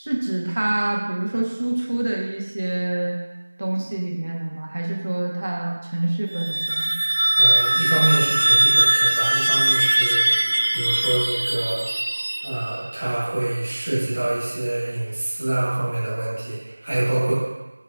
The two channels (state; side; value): inverted; both; correlation -1.00